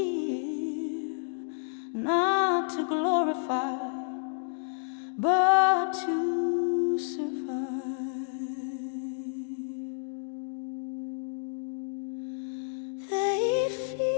not to glorify, but to survive. They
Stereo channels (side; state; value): right; silent; digital silence